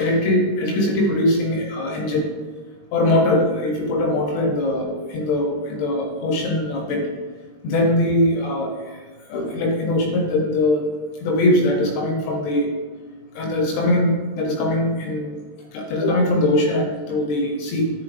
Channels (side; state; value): right; late; 20 ms